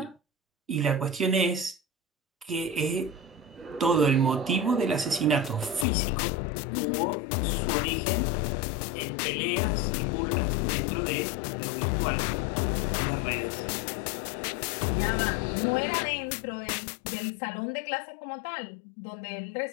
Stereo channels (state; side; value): drops out; right; at 5.9 s